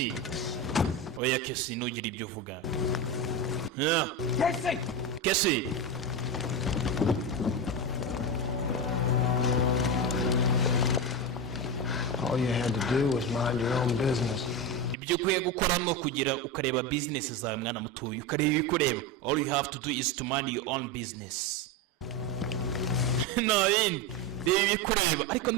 oya, Kesi nugira ibyo uvuga. Kesi All you had to do was mind your own business. ibyo ukwiye gukora no kugira ukareba business zawe mwana mutuye, ukareba ibikureba. All you have to do is to mind your own business. Nayindi reba ibikureba, ariko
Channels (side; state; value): both; normal; correlation 0.16